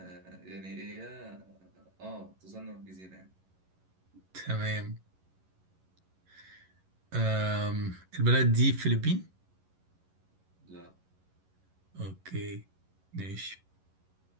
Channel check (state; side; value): late; left; 11 ms